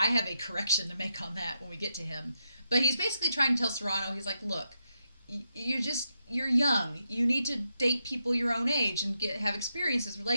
have a correction to make on that when we get to him. But he's basically trying to tell Serrano, he's like, look, you're young. You need to date people your own age and have experiences,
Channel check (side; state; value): both; inverted; correlation -0.83